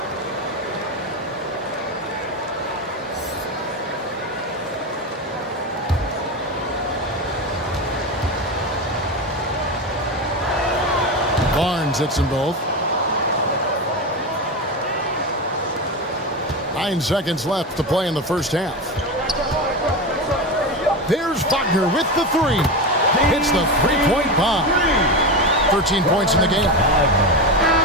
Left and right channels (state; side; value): normal; both; correlation 0.19